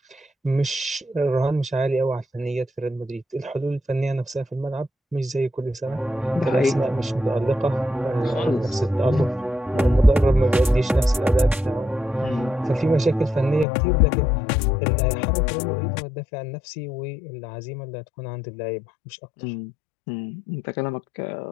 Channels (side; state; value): right; drops out; at 13.7 s